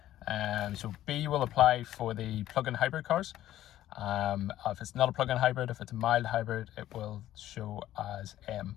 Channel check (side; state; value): right; quieter; 13.3 dB